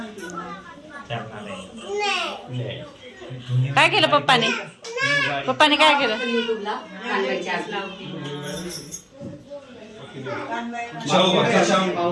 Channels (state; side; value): identical; both; correlation 1.00